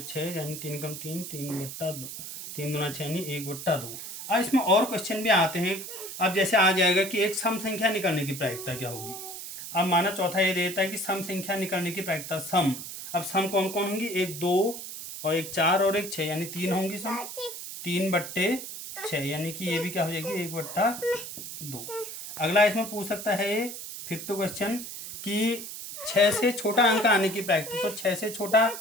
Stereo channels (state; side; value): noise; right; hiss, 9 dB below the sound